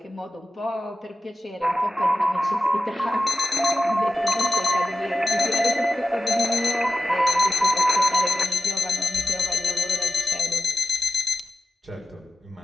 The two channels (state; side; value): normal; both; correlation 0.94